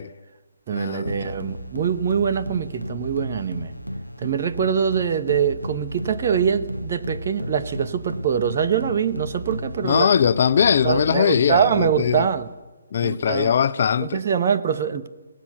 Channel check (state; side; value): inverted; both; correlation -0.57